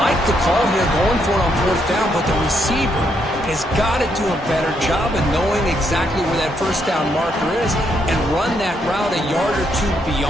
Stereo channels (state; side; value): normal; both; correlation 0.76